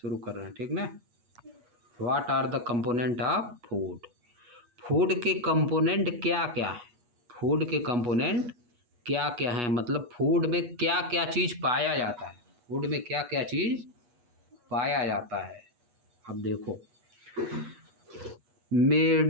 कर रहे हैं, ठीक ना। What are the component of food, food के कंपोनेंट क्या क्या है, फूड के कंपोनेंट क्या क्या हैं, मतलब फूड में क्या क्या चीज़ पाया जाता है, फूड में क्या क्या चीज़ पाया जाता है। अब देखो,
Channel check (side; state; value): left; late; 8.3 ms